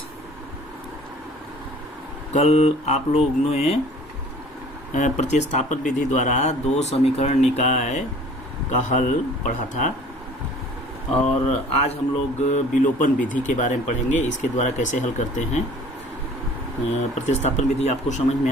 कल आप लोग ने प्रतिस्थापन विधि द्वारा दो समीकरण निकाय का हल पढ़ा था और आज हम लोग विलोपन विधि के बारे में पढ़ेंगे। इसके द्वारा कैसे हल करते हैं। प्रतिस्थापन विधि आपको समझ में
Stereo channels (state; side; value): normal; both; correlation 0.49